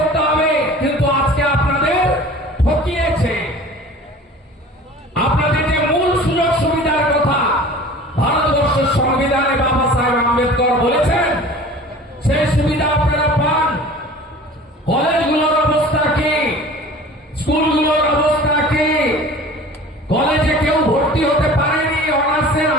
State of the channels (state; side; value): normal; both; correlation 0.42